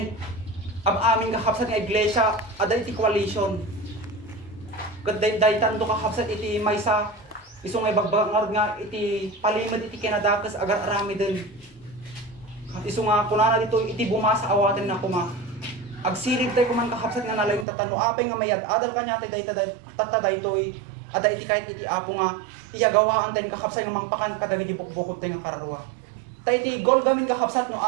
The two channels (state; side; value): drops out; left; at 17.7 s